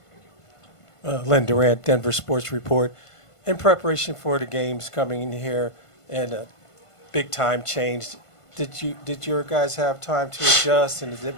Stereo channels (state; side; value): late; right; 1.5 ms